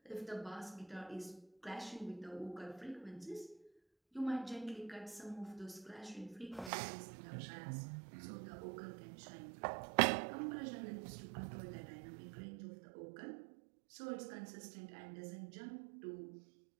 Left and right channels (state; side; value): drops out; left; at 6.7 s